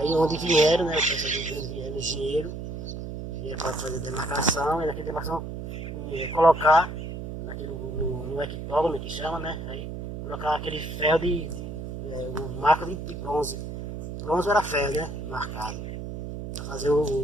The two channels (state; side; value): noise; right; hum, 7 dB below the sound